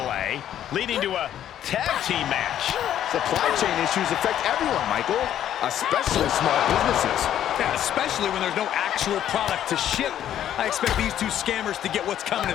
leading to a tag team match. Supply chain issues affect everyone, Michael, especially small businesses. Yeah, especially when there's no actual product to ship. I expect these two scammers to get what's coming to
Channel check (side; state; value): right; quieter; 10.9 dB